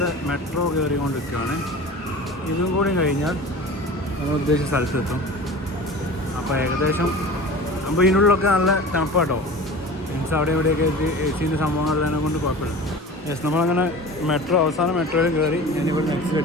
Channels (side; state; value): both; normal; correlation 0.37